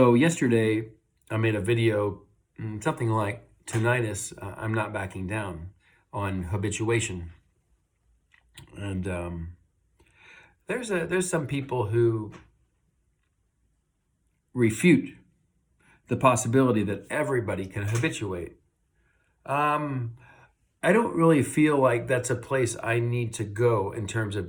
yesterday I made a video, something like tinnitus, I'm not backing down, on habituation. And there's some people who refute the possibility that everybody can habituate. Um, I don't really feel like that's a place I need to go in terms of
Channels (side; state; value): both; identical; correlation 1.00